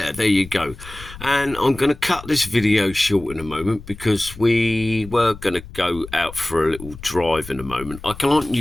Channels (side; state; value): left; noise; rumble, 16 dB below the sound